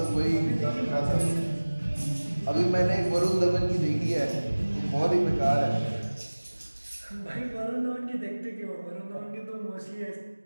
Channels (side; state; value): both; inverted; correlation -1.00